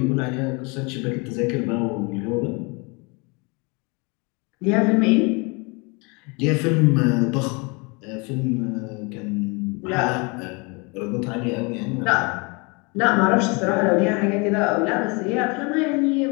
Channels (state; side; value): quieter; right; 29.8 dB